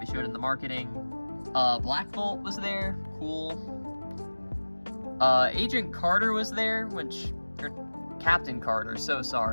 showed in the marketing. Black Bolt was there. Cool. Agent Carter was there, or Captain Carter, so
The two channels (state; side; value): inverted; both; correlation -1.00